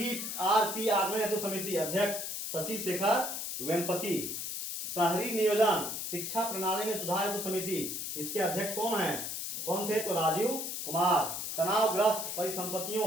आगमन हेतु समिति, अध्यक्ष शशि शेखर वेम्पति। शहरी नियोजन शिक्षा प्रणाली में सुधार हेतु समिति, इसके अध्यक्ष कौन थे? तो राजीव कुमार। तनावग्रस्त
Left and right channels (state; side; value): noise; left; hiss, 4 dB below the sound